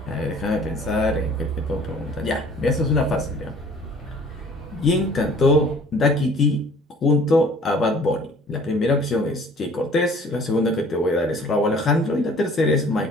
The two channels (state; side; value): normal; both; correlation 0.52